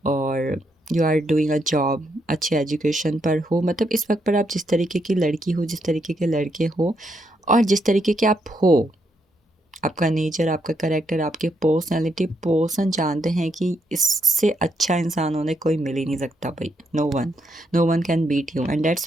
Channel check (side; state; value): both; normal; correlation 0.77